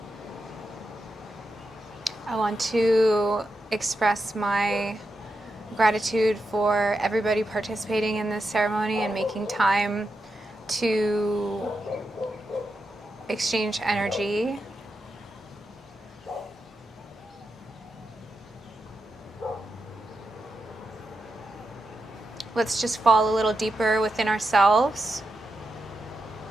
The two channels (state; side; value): normal; both; correlation 0.87